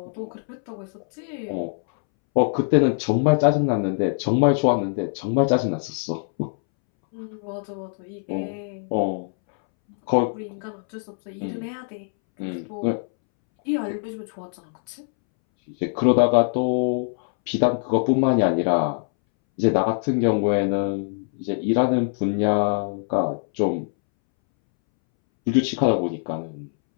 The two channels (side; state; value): right; silent; 63 dB below the other